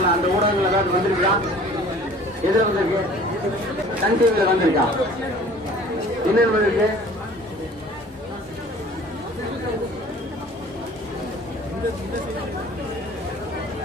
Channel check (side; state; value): both; normal; correlation 0.48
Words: அந்த ஊடகங்கள் ஏதாவது வந்திருக்கா? எதுல வந்திருக்கு? சன் டிவில வந்திருக்கா? என்ன வந்திருக்கு?